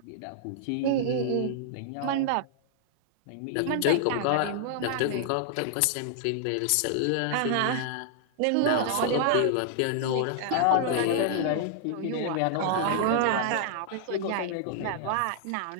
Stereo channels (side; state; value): both; different; correlation -0.01